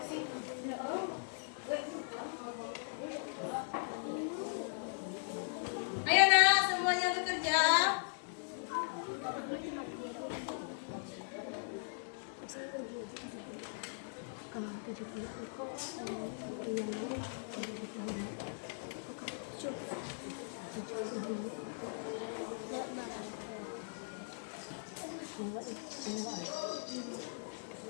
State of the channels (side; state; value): right; silent; digital silence